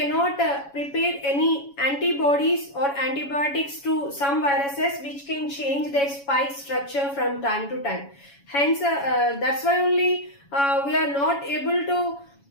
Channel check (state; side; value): late; right; 7.2 ms